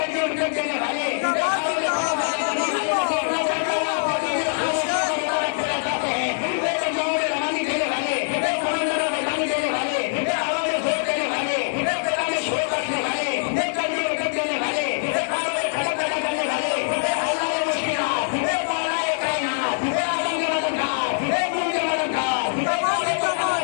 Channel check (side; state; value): right; silent; 62 dB below the other